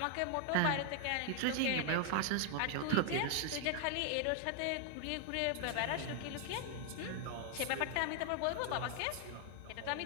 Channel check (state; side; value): different; both; correlation 0.00